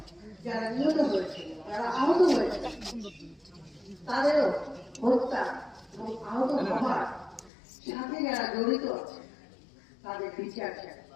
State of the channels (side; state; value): right; drops out; at 7.5 s